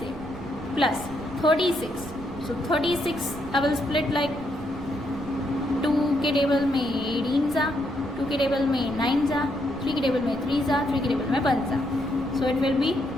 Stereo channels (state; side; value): noise; right; rumble, 15 dB below the sound